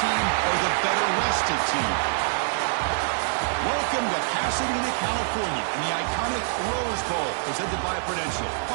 or the better-rested team? Welcome to Pasadena, California, in the iconic Rose Bowl, presented by Prudential,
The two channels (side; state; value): left; silent; digital silence